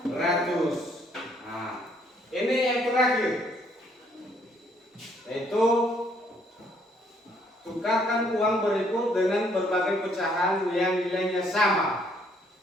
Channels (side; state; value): both; normal; correlation 0.67